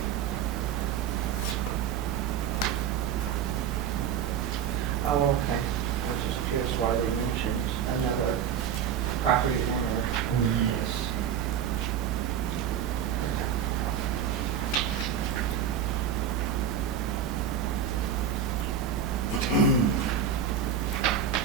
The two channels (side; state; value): left; quieter; 8.4 dB